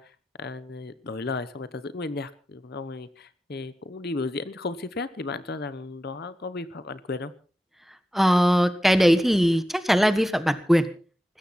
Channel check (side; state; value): both; normal; correlation 0.92